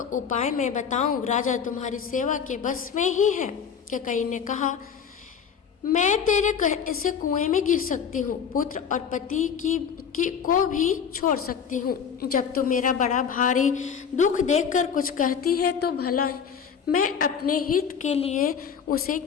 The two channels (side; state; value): right; quieter; 7.2 dB